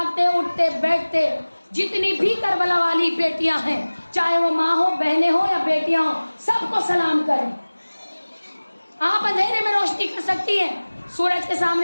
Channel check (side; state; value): both; inverted; correlation -1.00